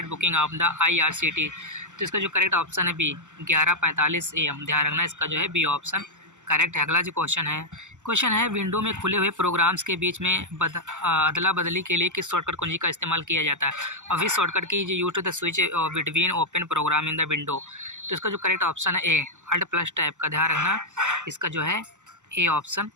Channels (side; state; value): left; late; 0.85 ms